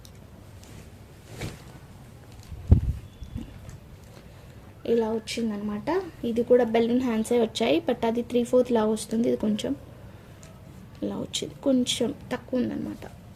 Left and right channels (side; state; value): both; identical; correlation 1.00